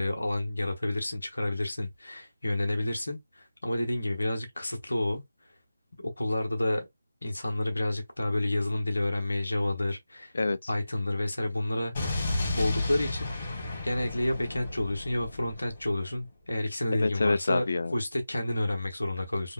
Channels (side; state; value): both; inverted; correlation -0.95